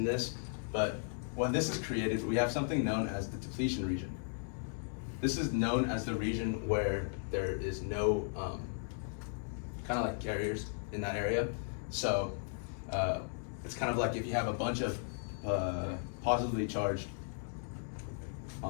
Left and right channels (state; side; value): silent; right; digital silence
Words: this, but when this is created, we have something known as the depletion region. This is known as the region where there is no kind of like carriers in that area. So it's kind of like if you have a bunch of positively charged